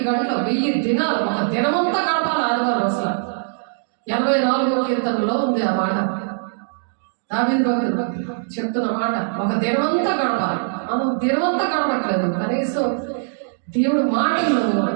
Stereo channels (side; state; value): left; silent; digital silence